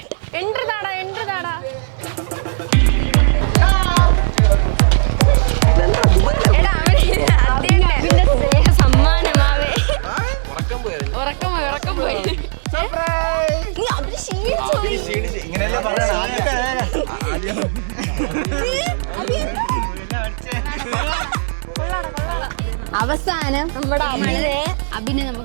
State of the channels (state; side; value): silent; left; digital silence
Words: എൻട്രി താടാ. സമ്മാനമാവേ. ഉറക്കം പോയി. നീ അവര് അവസാനം നമ്മുടെ അഭിനയം